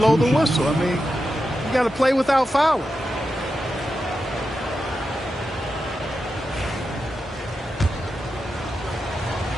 the whistle. I mean, you got to play without fouling.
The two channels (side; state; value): both; normal; correlation 0.89